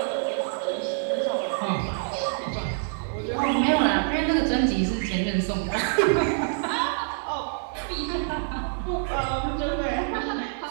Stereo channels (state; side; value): silent; left; digital silence